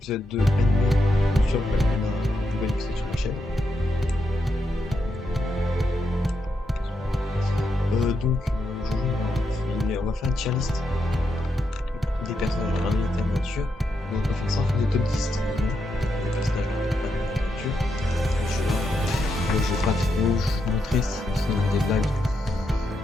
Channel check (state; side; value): normal; both; correlation 0.83